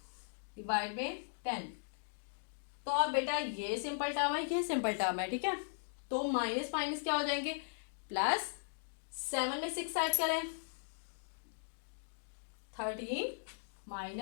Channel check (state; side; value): silent; right; digital silence